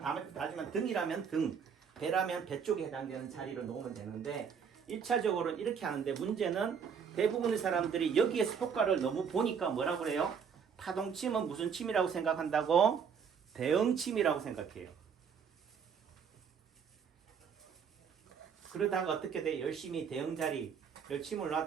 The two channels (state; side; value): quieter; left; 6.8 dB